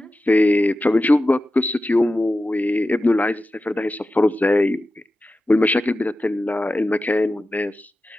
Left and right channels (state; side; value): normal; both; correlation 0.93